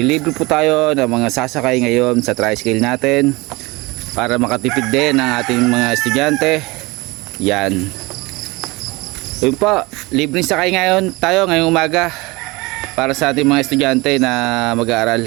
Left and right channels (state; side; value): quieter; left; 23.7 dB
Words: po tayo ng mga sasakay ngayon sa tricycle natin para makatipid din ang ating mga estudyante. Yan. Yun po, libreng sakay ngayon tayo ngayong umaga para sa ating mga estudyante na